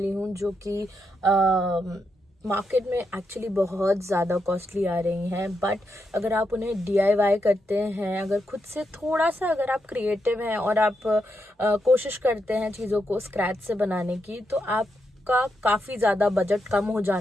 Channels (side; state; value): both; normal; correlation 0.83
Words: हूँ जो कि मार्केट में एक्चुअली बहुत ज़्यादा कॉस्टली आ रही हैं, बट अगर आप उन्हें DIY करते हैं, अगर खुद से थोड़ा सा अगर आप क्रिएटिव हैं और आप कोशिश करते हैं चीज़ों को स्क्रैच से बनाने की, तो आपका काफ़ी ज़्यादा बजट कम हो